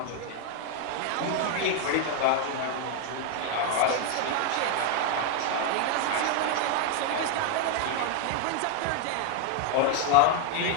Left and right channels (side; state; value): both; different; correlation 0.00